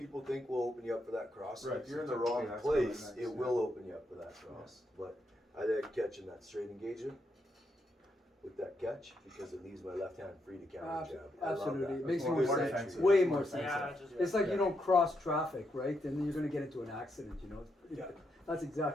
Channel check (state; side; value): normal; both; correlation 0.80